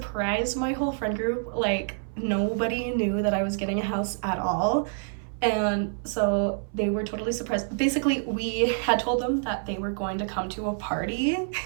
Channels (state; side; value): silent; left; 60 dB below the other